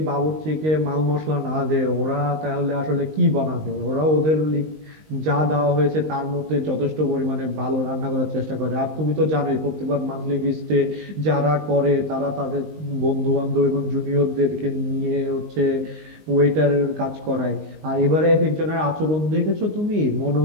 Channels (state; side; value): late; left; 19 ms